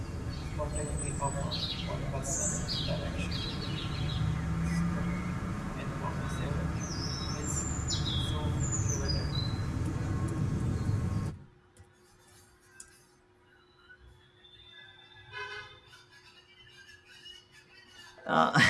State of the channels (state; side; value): identical; both; correlation 1.00